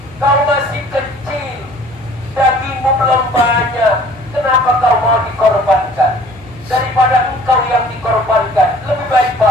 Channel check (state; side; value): noise; left; hum, 23 dB below the sound